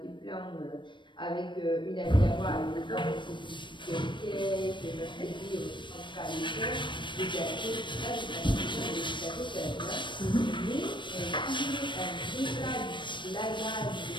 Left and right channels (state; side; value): late; right; 0.23 ms